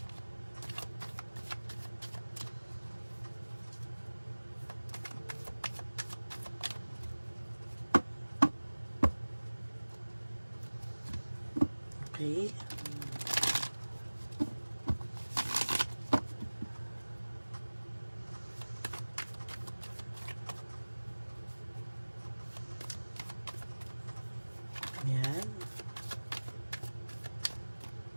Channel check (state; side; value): inverted; both; correlation -1.00